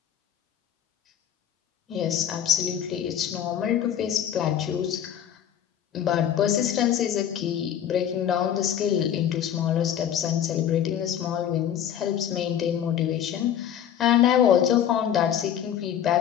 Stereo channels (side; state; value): right; quieter; 9.8 dB